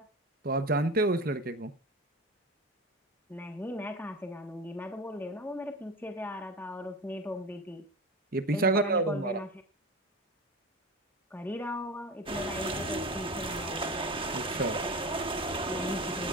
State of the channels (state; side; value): normal; both; correlation 0.28